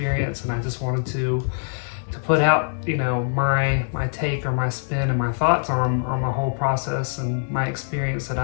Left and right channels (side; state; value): right; silent; digital silence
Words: and I just wanted to put out, my take or my spin and my thoughts on my whole process and my experience that